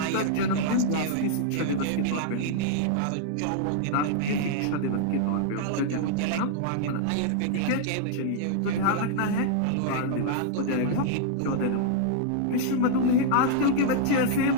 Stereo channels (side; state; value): both; different; correlation -0.01